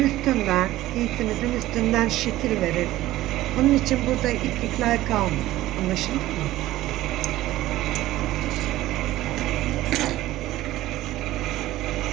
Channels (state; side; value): quieter; left; 15.7 dB